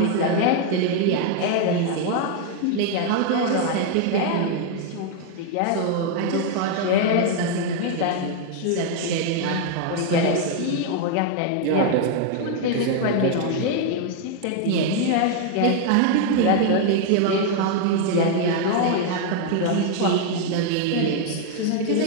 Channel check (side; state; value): both; different; correlation 0.00